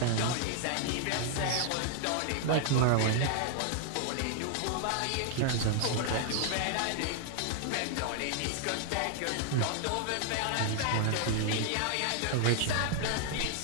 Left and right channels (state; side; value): different; both; correlation 0.00